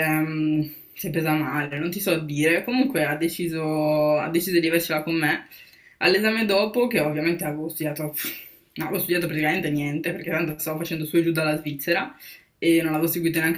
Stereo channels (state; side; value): identical; both; correlation 1.00